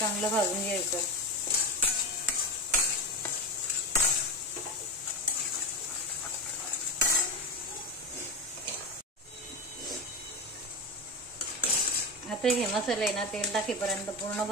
भाजून घ्यायचं. आता हे मसाले ना तेल टाकेपर्यंत पूर्ण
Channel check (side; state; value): both; normal; correlation 0.20